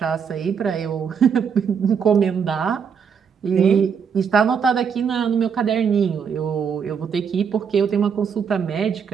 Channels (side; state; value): left; quieter; 6.8 dB